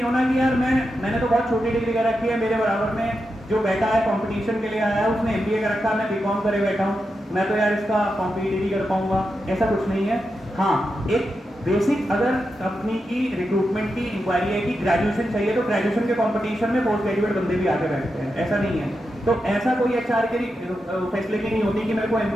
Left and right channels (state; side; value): normal; both; correlation 0.87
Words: होना कि यार मैंने तो बहुत छोटी डिग्री कर रखी है, मेरे बराबर में जो बैठा है कंपटीशन के लिए आया है उसने एमबीए कर रखा, मैं बीकॉम करे बैठा हूँ, मैं तो यार इसका कॉम्पिटिटिव नहीं कर पाऊंगा, ऐसा कुछ नहीं है। हाँ, एक बेसिक अगर कंपनी की रिक्रूटमेंट की इंक्वायरी है कि ग्रेजुएशन चाहिए, तो ग्रेजुएशन के कंपटीशन में पोस्ट ग्रेजुएट बंदे भी आगे बैठते हैं, ऐसा नहीं है। तो ऐसा कोई एचआर की फैसिलिटी नहीं होती कि मेरे को